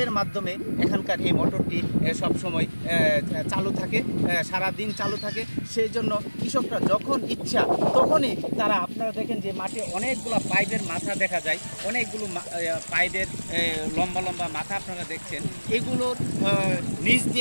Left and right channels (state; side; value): inverted; both; correlation -1.00